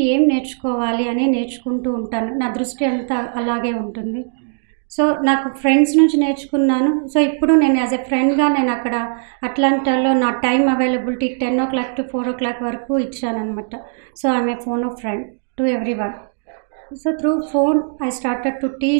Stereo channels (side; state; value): left; silent; digital silence